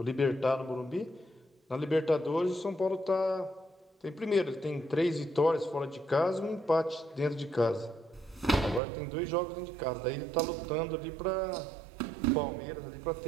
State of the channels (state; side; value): drops out; left; at 8.8 s